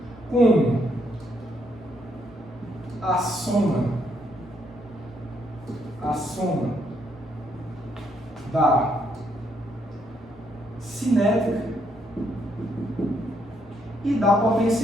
como a soma da cinética e da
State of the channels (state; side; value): normal; both; correlation 0.73